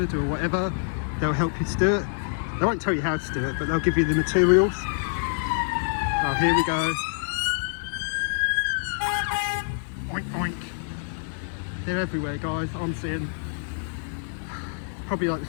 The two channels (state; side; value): silent; right; 55 dB below the other